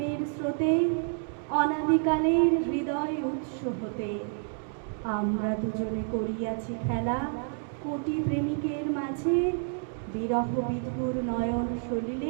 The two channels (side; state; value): left; silent; 57 dB below the other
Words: স্রোতে, অনাদিকালের হৃদয় উৎস হতে। আমরা দুজনে করিয়াছি খেলা কোটি প্রেমিকের মাঝে, বিরহ বিধুর নয়ন